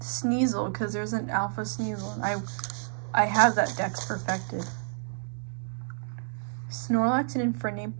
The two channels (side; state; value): left; silent; digital silence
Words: because there's an Alpha Sneasel, and I have that Dex perfected. Snorlax and Infernape